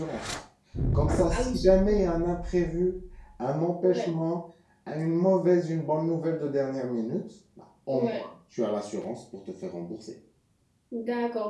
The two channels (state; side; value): identical; both; correlation 1.00